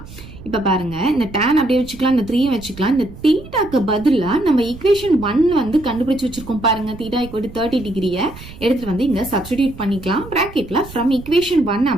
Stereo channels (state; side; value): noise; right; rumble, 16 dB below the sound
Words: இப்ப பாருங்க இந்த tan அப்படியே வச்சுக்கலாம், இந்த 3 வச்சுக்கலாம். இந்த தீட்டாக்கு பதிலா நம்ம ஈக்குவேஷன் 1 கண்டுபிடிச்சு வச்சிருக்கோம் பாருங்க, தீட்டா ஈக்குவல் டு 30 டிகிரியை எடுத்துட்டு இங்க சப்ஸ்டிடியூட் பண்ணிக்கலாம். பிராக்கெட்ல ஃப்ரம் ஈக்குவேஷன் 1